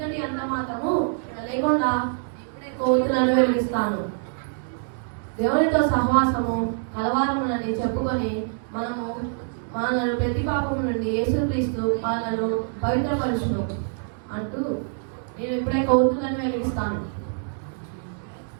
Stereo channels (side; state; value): left; silent; 62 dB below the other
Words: అంత మాత్రము లేకుండా ఇప్పుడే కోతులను వెలిగిస్తాను. దేవునితో సహవాసము కలవారమునని చెప్పుకొని మనను ప్రతి పాపము నుండి యేసుక్రీస్తు మనను పవిత్రపరచును అంటూ నేను ఇప్పుడే కోతులను వెలిగిస్తాను.